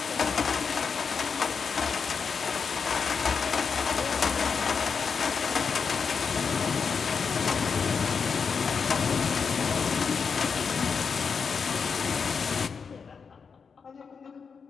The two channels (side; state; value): right; quieter; 5.8 dB